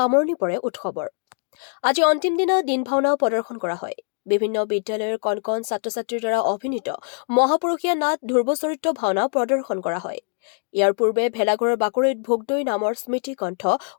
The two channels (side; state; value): right; silent; 57 dB below the other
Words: পৰে উৎসৱৰ। আজি অন্তিম দিনা দিন ভাওনাও প্ৰদৰ্শন কৰা হয়। বিভিন্ন বিদ্যালয়ৰ কণ কণ ছাত্ৰ-ছাত্ৰীৰ দ্বাৰা অভিনীত মহাপুৰুষীয়া নাট ধ্ৰুৱ চৰিত্ৰ ভাওনা প্ৰদৰ্শন কৰা হয়। ইয়াৰ পূৰ্বে ভেলাঘৰৰ বাকৰিত ভোগদৈ নামৰ স্মৃতি গ্ৰন্থ